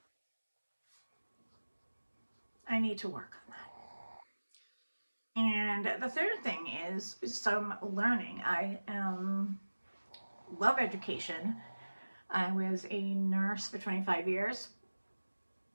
I need to work on that. And the third thing is some learning. I love education. I was a nurse for 25 years.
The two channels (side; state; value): both; inverted; correlation -1.00